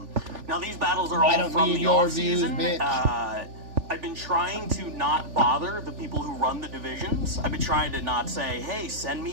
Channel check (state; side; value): late; left; 3.4 ms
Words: these battles are all from the off-season. I've been trying to not bother the people who run the divisions. I've been trying to not say, hey, send